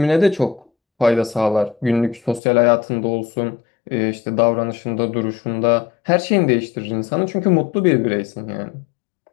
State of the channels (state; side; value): drops out; right; at 2.4 s